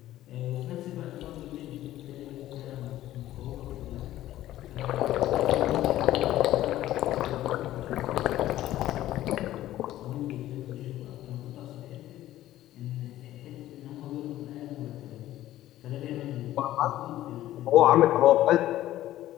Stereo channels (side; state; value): right; quieter; 14.1 dB